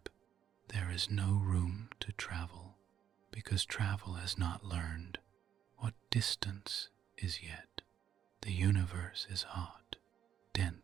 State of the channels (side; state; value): left; quieter; 9.6 dB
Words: There is no room to travel, because travel has not learned what distance is yet. The universe is hot,